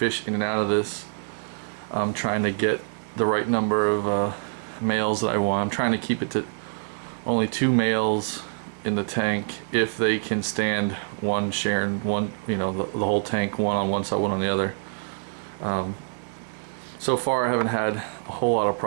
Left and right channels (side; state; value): left; silent; digital silence